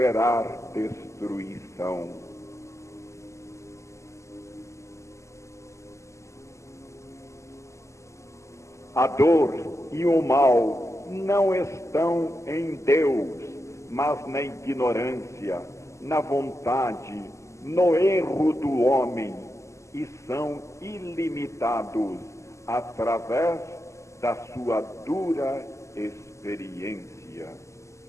destruição. A dor e o mal não estão em Deus, mas na ignorância, na vontade, no erro do homem, e são ilimitados através da sua dura experiência.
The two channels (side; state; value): right; late; 0.14 ms